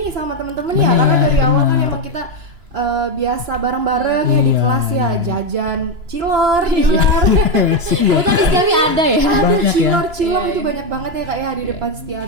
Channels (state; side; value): late; left; 2.9 ms